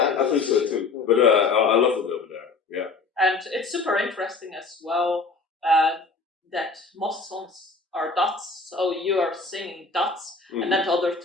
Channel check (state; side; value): quieter; right; 4.1 dB